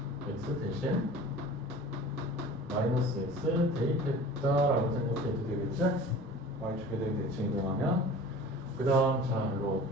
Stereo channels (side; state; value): both; normal; correlation 0.41